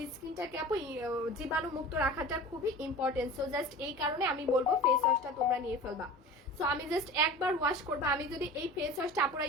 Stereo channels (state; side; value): normal; both; correlation 0.37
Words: স্কিনটাকে আপু জীবাণু মুক্ত রাখাটা খুবই ইম্পর্টেন্ট। সো জাস্ট এই কারণে আমি বলবো ফেস ওয়াশটা তোমরা নিয়ে ফেলবা। সো আমি জাস্ট একবার ওয়াশ করবো। আমি যদি এই ফেস ওয়াশটা আপুরা